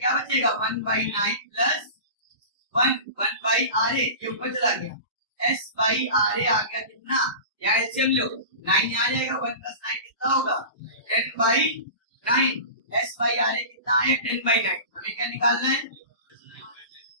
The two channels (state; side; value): inverted; both; correlation -0.33